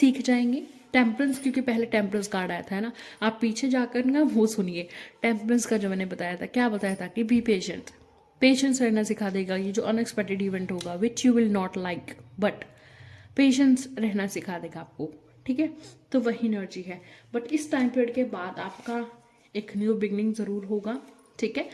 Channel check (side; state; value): both; identical; correlation 1.00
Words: जाएंगे। टेम्परेंस, क्योंकि पहले टेम्परेंस कार्ड आया था, है ना, आप पीछे जाकर ना वो सुनिए टेम्परेंस का जो मैंने बताया था, क्या बताया था कि बी पेशेंट, पेशेंस रहना सिखा देगा ये जो अनएक्सपेक्टेड इवेंट होगा which you will not like, but patience रहना सिखा देगा आपको। ठीक है, तो वही एनर्जी है, बट इस टाइम पीरियड के बाद आपका एक न्यू बिगनिंग ज़रूर होगा। ठीक है,